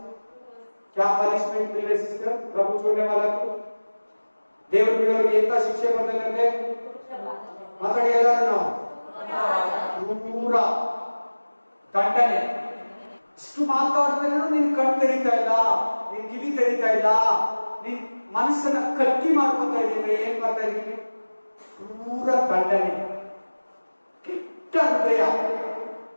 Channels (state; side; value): inverted; both; correlation -1.00